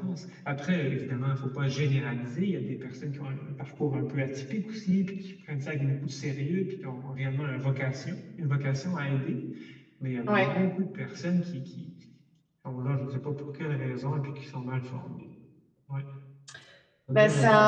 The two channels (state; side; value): identical; both; correlation 1.00